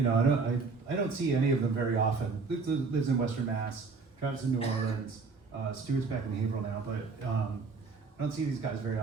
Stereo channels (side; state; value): left; quieter; 4.4 dB